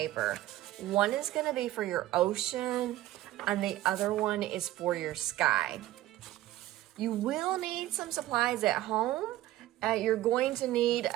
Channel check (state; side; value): quieter; left; 15.3 dB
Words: One is going to be for your ocean, and the other one is for your sky. You will need some supplies at home. You're going to need